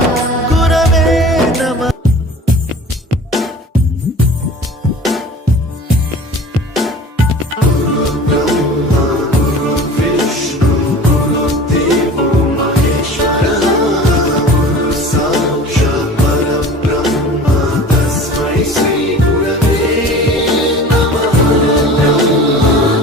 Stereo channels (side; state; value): both; normal; correlation 0.41